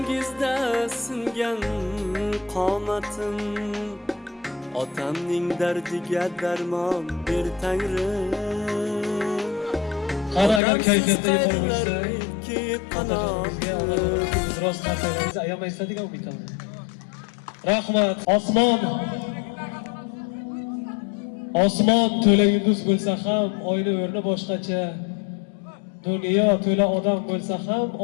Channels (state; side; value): drops out; right; at 10.6 s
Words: singan qomatim. Otamning dardiga darmon ber Tangrim. Qani agar kayfiyatda yuqori bo'lsa, rost narsalarni ayamaysiz degan umiddaman. Rahmat. Osmon to'la yulduz bo'lsa ham oyni o'rni boshqacha. Dunyo to'la odam bo'lsa ham